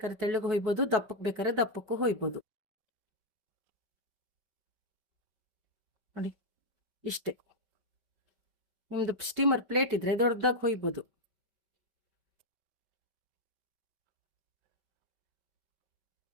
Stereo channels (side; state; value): left; late; 5.1 ms